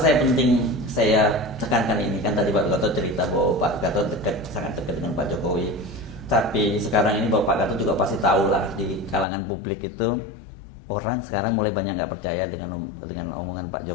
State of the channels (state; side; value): drops out; right; at 9.2 s